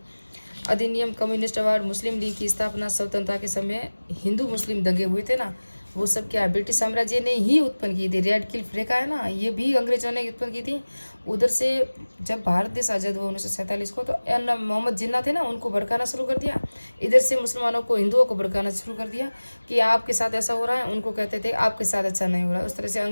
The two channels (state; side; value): inverted; both; correlation -1.00